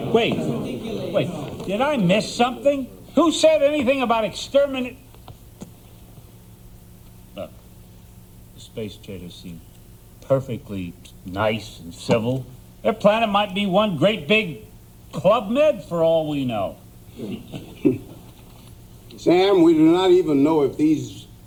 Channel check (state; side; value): identical; both; correlation 1.00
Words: Wait. Did I miss something? Who said anything about exterminate? Look, the space traders seem perfectly nice and civil. Their planet might be one great big Club Med for all we know. Sam, we do not even know if these